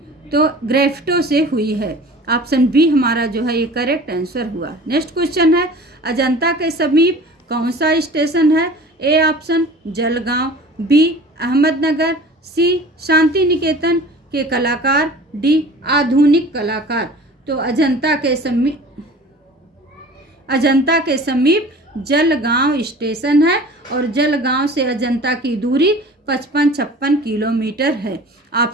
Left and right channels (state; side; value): normal; both; correlation 0.43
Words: तो ग्रेफ्टो से हुई है, ऑप्शन बी हमारा जो है ये करेक्ट आंसर हुआ। नेक्स्ट क्वेश्चन है, अजंता के समीप कौन सा स्टेशन है? A option Jalgaon, B Ahmednagar, C Shantiniketan के कलाकार, डी आधुनिक कलाकार। तो अजंता के समीप जलगांव स्टेशन है और जलगांव से अजंता की दूरी 55-56 किलोमीटर है,